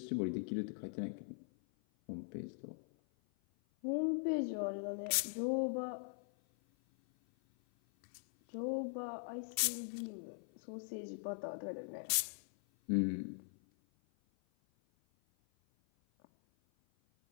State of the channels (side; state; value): right; silent; 50 dB below the other